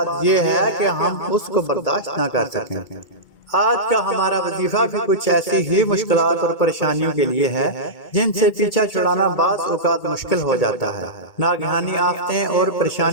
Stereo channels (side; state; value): right; late; 2.2 ms